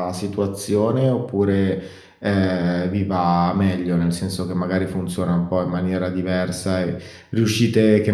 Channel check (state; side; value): identical; both; correlation 1.00